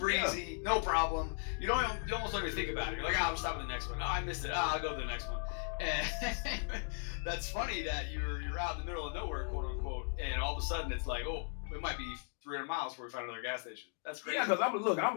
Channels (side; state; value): right; silent; 53 dB below the other